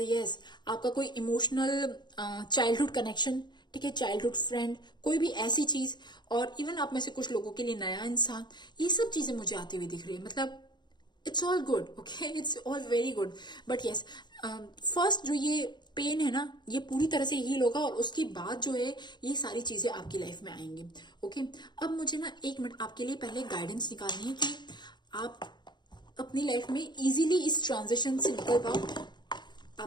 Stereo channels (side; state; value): right; late; 0.21 ms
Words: यस। आपका कोई इमोशनल चाइल्डहुड कनेक्शन, ठीक है, चाइल्डहुड फ्रेंड, कोई भी ऐसी चीज, और इवन आप में से कुछ लोगों के लिए नया इंसान, ये सब चीजें मुझे आती हुई दिख रही है। मतलब it's all good, okay, it's all very good. But yes, first जो ये पेन है ना, ये पूरी तरह से हील होगा, और उसके बाद जो है ये सारी चीजें आपकी लाइफ में आएंगी। ओके, अब मुझे ना 1 मिनट आपके लिए पहले गाइडेंस निकालनी है कि आप अपनी लाइफ में इजीली इस ट्रांजिशन से निकल पाओ।